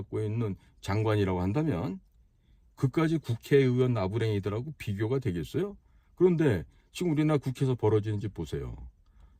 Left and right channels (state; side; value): identical; both; correlation 1.00